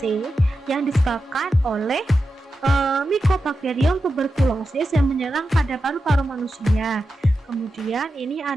yang disebabkan oleh Mycobacterium tuberculosis yang menyerang pada paru-paru manusia. Kemudian ini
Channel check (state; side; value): normal; both; correlation 0.90